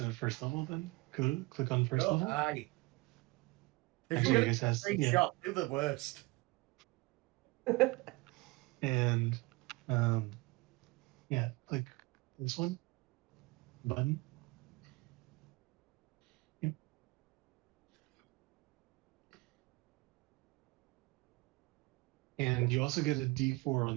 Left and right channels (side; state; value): left; quieter; 24.2 dB